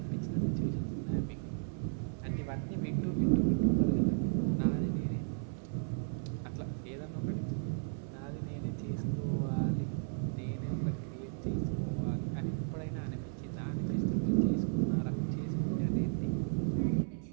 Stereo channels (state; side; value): silent; left; 55 dB below the other